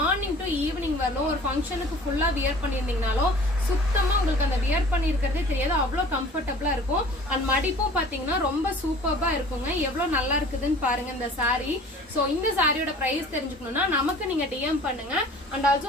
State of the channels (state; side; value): normal; both; correlation 0.46